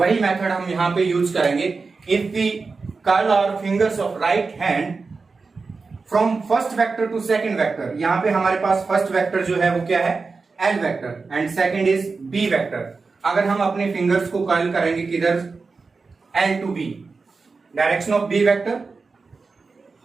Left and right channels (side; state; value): left; quieter; 4.3 dB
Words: मेथड हम यहां पे यूज करेंगे। If we curl our fingers of right hand from first vector to second vector, यहां पे हमारे पास फर्स्ट वेक्टर जो है वो क्या है, L vector, and second is B vector. अगर हम अपने फिंगर्स को कर्ल करेंगे किधर, L to B, direction of B vector